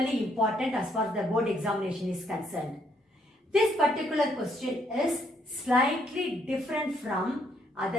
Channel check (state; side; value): normal; both; correlation 0.71